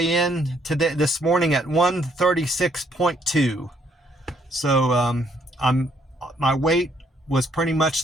in this morning at 136.2. So my weight was pretty much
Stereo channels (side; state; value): both; normal; correlation 0.69